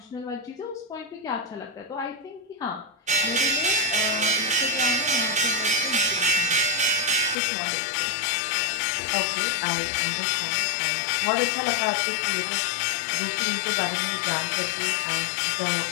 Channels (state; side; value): drops out; right; at 7.4 s